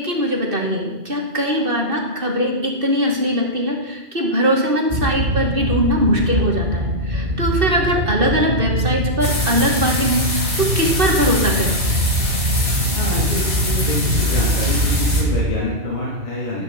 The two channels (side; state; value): left; late; 2.1 ms